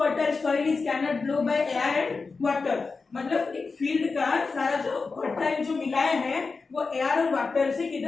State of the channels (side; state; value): right; quieter; 4.3 dB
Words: fertile soil is cannot blow by air and water. मतलब एक फील्ड का सारा जो फर्टाइल जो मिलाए हैं वो एयर और वाटर से